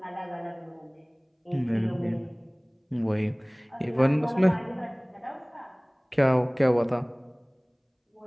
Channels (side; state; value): both; identical; correlation 1.00